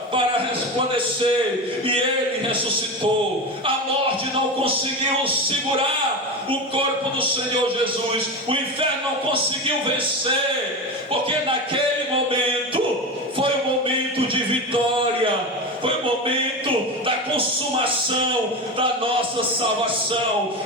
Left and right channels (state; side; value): normal; both; correlation 0.22